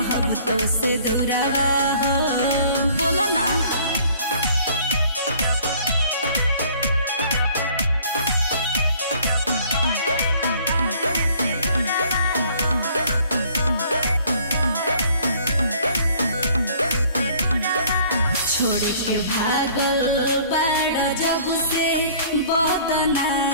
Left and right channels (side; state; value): both; inverted; correlation -0.55